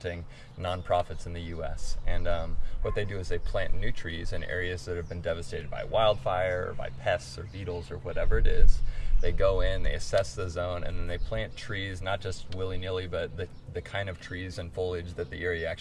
nonprofits in the U.S. And what they do is they plant new trees in areas that have been devastated by wildfire, or by pests or beetles or whatever it is. They go in, they assess the zone, and then they plant trees, not just willy-nilly, but the kind of trees and foliage that the area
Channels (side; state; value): both; identical; correlation 1.00